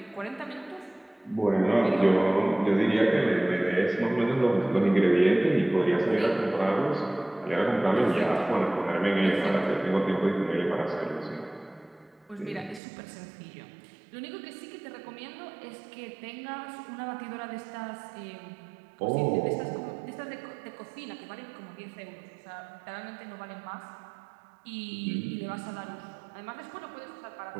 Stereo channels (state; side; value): drops out; left; at 12.8 s